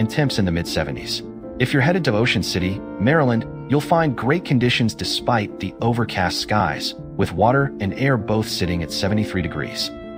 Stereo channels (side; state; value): both; identical; correlation 1.00